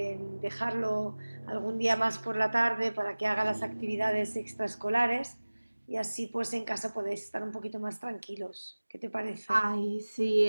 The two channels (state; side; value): inverted; both; correlation -1.00